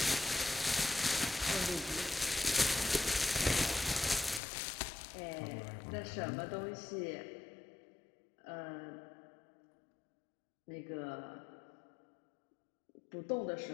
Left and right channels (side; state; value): right; drops out; at 4.4 s